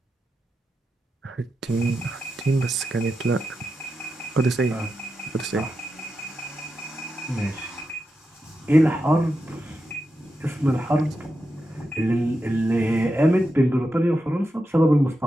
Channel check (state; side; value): normal; both; correlation 0.88